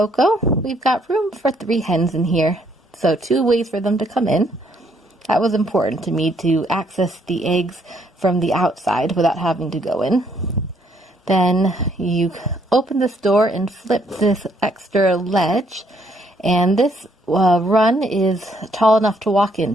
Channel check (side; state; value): both; normal; correlation 0.69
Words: We've got room for 3 hens in here, so 2 ways for them to come in. That was important to me, to access the eggs from the outside without having to go in. Then you open this door and flip this extra ledge, and this run is tall enough to walk